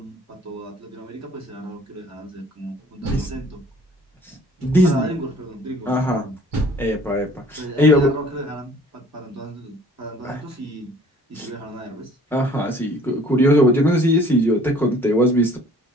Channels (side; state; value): both; normal; correlation 0.53